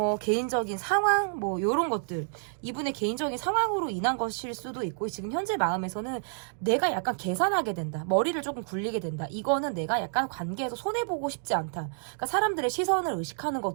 개인적인 상황 뭐 요런 것들 이분의 개인적인 상황으로 인한 것일 수도 있고 지금 현재 마음에서는 내가 약간 계산하게 된다. 머리를 조금 굴리게 된다. 이거는 내가 약간 관계에서 손해보고 싶지 않다. 그러니까 사람들의 시선을 의식하는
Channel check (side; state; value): left; silent; digital silence